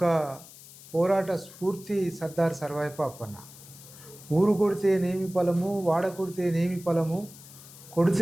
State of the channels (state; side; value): noise; left; hiss, 19 dB below the sound